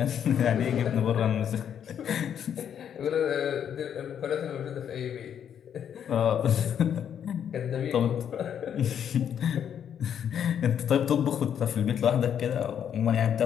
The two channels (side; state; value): right; quieter; 8.8 dB